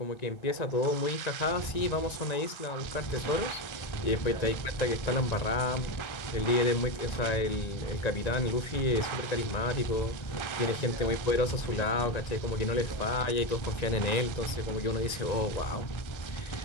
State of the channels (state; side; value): late; right; 1.9 ms